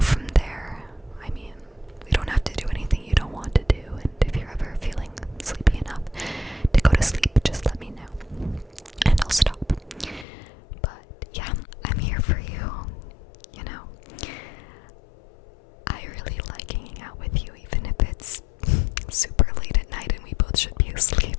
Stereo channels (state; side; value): drops out; right; at 10.2 s